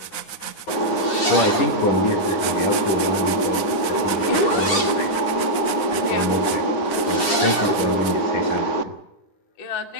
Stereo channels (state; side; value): late; right; 10 ms